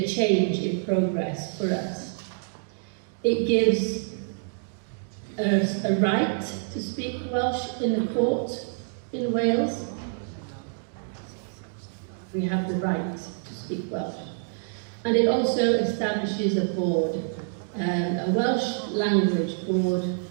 a change in progress for us. It gives us a right to speak Welsh in the court in Wales. We have the right to speak Welsh. And it also establishes a board, a Welsh language board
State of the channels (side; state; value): left; silent; digital silence